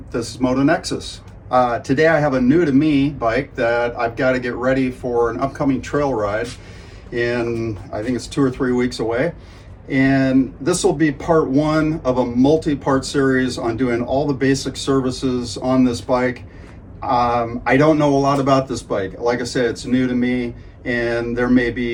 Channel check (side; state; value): both; identical; correlation 1.00